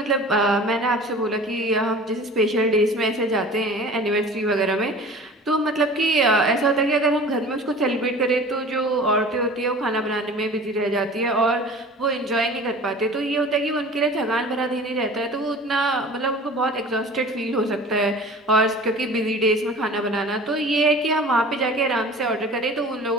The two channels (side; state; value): both; normal; correlation 0.41